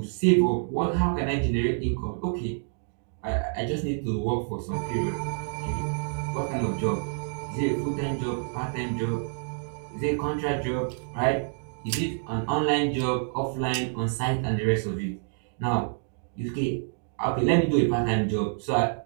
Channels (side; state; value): left; silent; digital silence